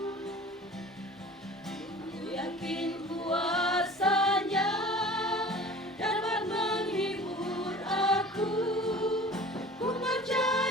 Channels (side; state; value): both; normal; correlation 0.42